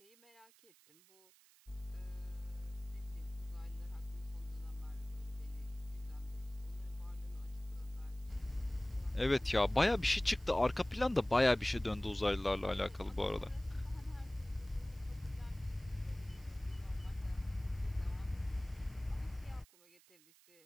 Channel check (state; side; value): noise; right; hiss, 26 dB below the sound